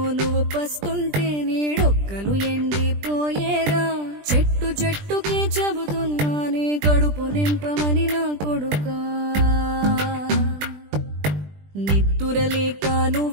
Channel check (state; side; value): late; left; 20 ms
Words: నువ్వు పస్తుంటే నీడొక్కలు ఎండిపోయేరా చెట్టు చెట్టుకే చెబుతున్నా నీ కడుపు నింపమని నా కొడుకా నిద్దురలేక